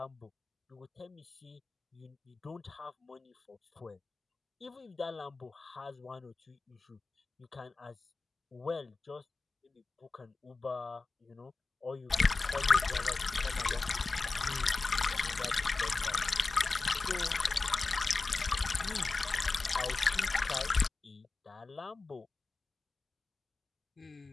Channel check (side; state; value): right; quieter; 3.8 dB